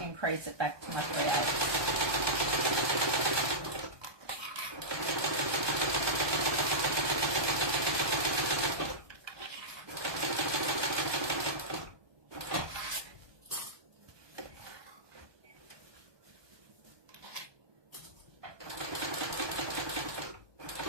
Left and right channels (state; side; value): late; left; 1.2 ms